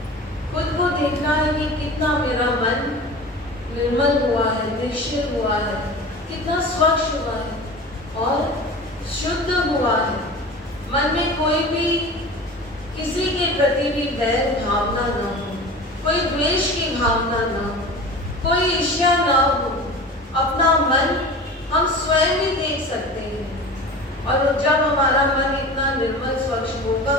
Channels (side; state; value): both; normal; correlation 0.35